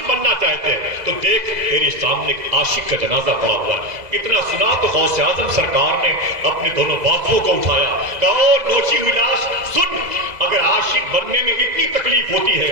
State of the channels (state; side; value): late; left; 2.0 ms